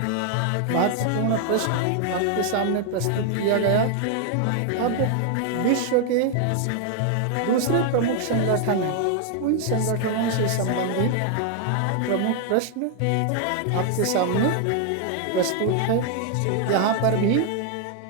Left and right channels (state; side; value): different; both; correlation 0.00